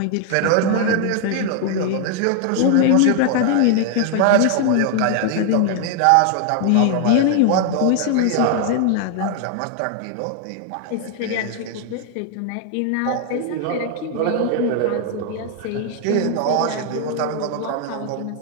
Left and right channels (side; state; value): both; different; correlation 0.00